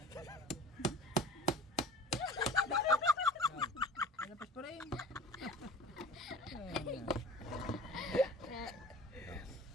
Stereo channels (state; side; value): normal; both; correlation 0.42